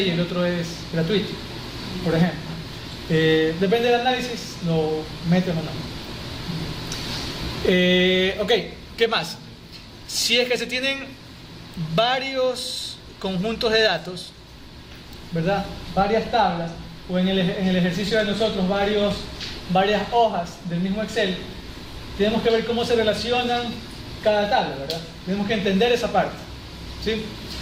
y el otro es gratuito, por ejemplo. Depende del análisis, lo meten o no. Ok, ¿qué más? Si es que se tienen varios conjuntos de datos, ¿verdad? Varias tablas, o en el ejercicio de nosotros varias hojas del mismo Excel, tenemos que ver cómo se relacionan cada tabla, ¿verdad? Tenemos que entender esa parte, ¿sí?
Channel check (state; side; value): identical; both; correlation 1.00